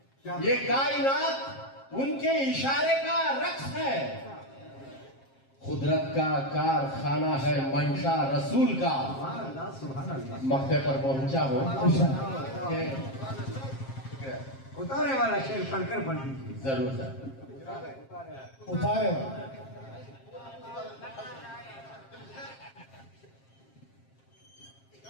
یہ کائنات ان کے اشارے کا رقص ہے قدرت کا کارخانہ ہے منشا رسول کا سبحان اللہ مقطع پر پہنچا ہو کہ اتارے والا شیر پڑھ کر پڑھ دیجیے ضرور سر اتارے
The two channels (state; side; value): late; right; 7.5 ms